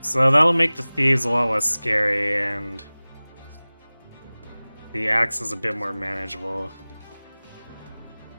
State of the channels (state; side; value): inverted; both; correlation -0.99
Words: that'll make the thieves a lot less scary, and the axe is a bit more manageable.